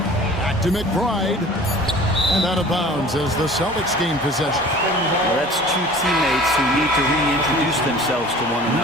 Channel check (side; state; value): both; normal; correlation 0.45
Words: to McBride. And out of bounds as the Celtics gain possession. Well, that's two teammates who need to reintroduce themselves to one